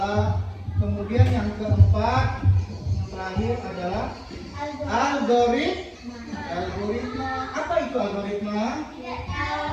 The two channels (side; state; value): both; identical; correlation 1.00